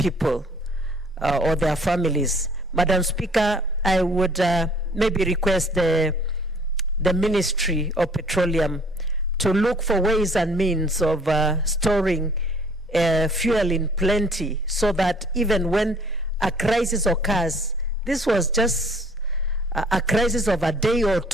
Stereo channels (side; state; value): both; normal; correlation 0.56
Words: or their families. Madam Speaker, I would maybe request the Ministry of Petroleum to look for ways and means of storing fuel in plenty, so that even when a crisis occurs, this was just a crisis of a day or